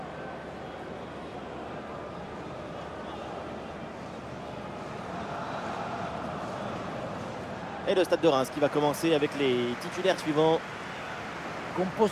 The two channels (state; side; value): identical; both; correlation 1.00